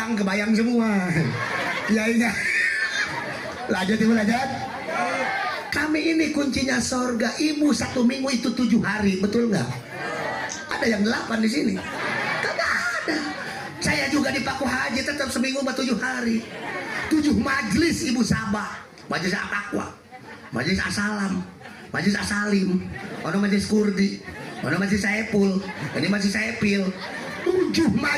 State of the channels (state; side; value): identical; both; correlation 1.00